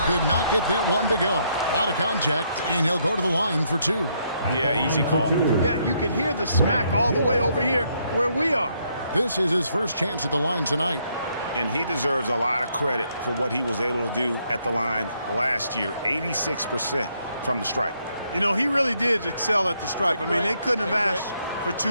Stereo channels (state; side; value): inverted; both; correlation -0.73